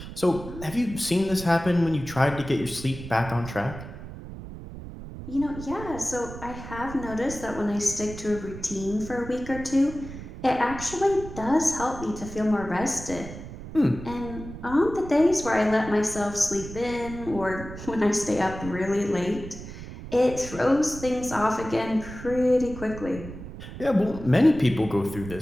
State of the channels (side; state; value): right; noise; rumble, 12 dB below the sound